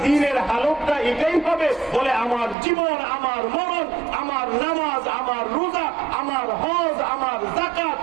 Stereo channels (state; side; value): drops out; left; at 2.6 s